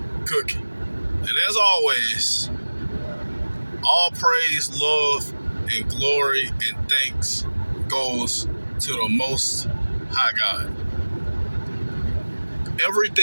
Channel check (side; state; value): both; inverted; correlation -1.00